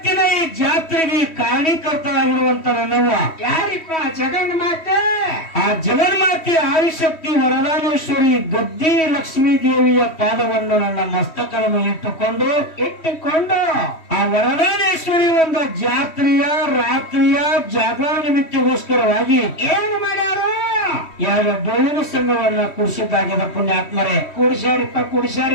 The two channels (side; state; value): right; late; 3.1 ms